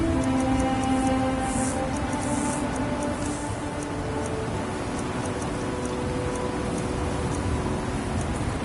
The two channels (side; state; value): both; identical; correlation 1.00